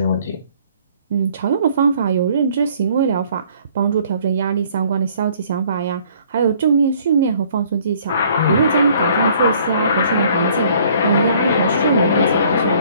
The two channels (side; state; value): both; inverted; correlation -0.58